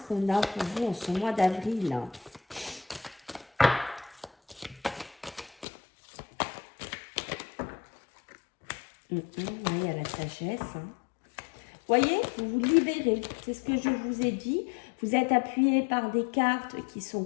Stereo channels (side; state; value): right; drops out; at 5.7 s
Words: qu'on a pour vous en ce mois d'avril? Il y a la sagesse. Hein. Voyez, vous vous libérez. C'est ce que je vous ai dit. Vous êtes appuyé par des cartes qui sont